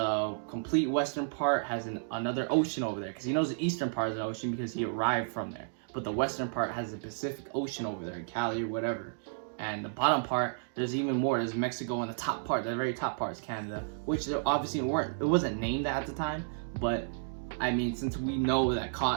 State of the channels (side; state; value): left; silent; digital silence